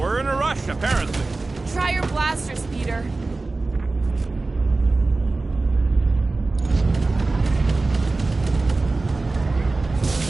in a rush, apparently. Try your blasters, Peter.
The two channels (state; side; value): quieter; left; 3.4 dB